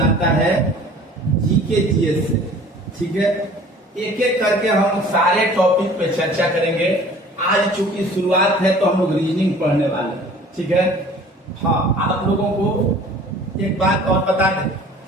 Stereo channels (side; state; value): both; normal; correlation 0.49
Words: आता है जीके जीएस से। ठीक है, एक एक करके हम सारे टॉपिक पे चर्चा करेंगे। आज चूंकि शुरुआत है तो हम लोग रीजनिंग पढ़ने वाले हैं। ठीक है, हाँ, आप लोगों को एक बात और बता दें